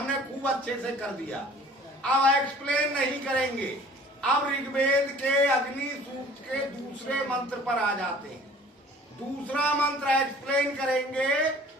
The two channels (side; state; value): both; normal; correlation 0.50